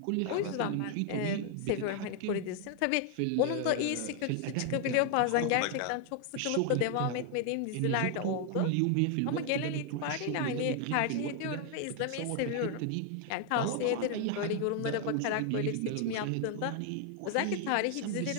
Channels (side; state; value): both; different; correlation 0.00